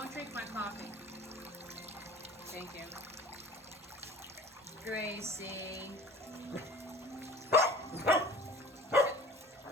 drink my coffee. Thank you. Gracie.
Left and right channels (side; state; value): both; normal; correlation 0.42